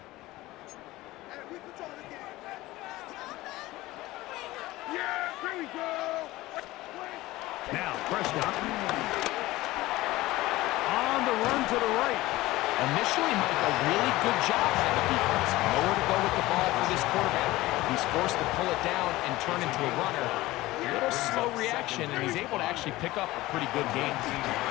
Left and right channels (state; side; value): quieter; right; 18.2 dB